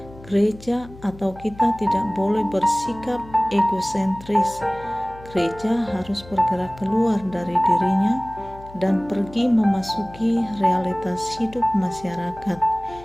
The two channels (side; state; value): left; noise; hum, 19 dB below the sound